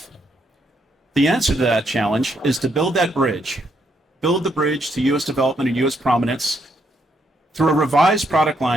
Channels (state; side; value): normal; both; correlation 0.75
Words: The answer to that challenge is to build that bridge, build the bridge to U.S. development and U.S. prominence through a revised product